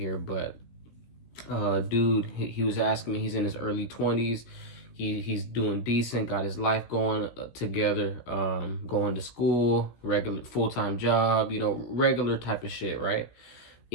but dude, he was asking me, he's in his early 20s. He's doing decent, got his life going together, going to school, regular full-time job, regular type of shit, right?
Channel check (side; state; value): right; late; 17 ms